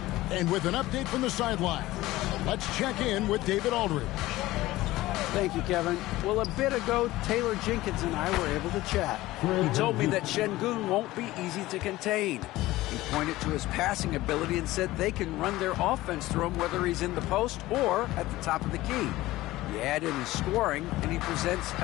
And with an update from the sideline, let's check in with David Aldridge. Thank you, Kevin. Well, a bit ago, Taylor Jenkins and I were able to chat. He told me that Şengün won't be easy to contain. He pointed to his passing ability and said they can run their offense through him whether he's in the post or at the top of the key. You add in his scoring, and he presents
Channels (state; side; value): quieter; right; 17.5 dB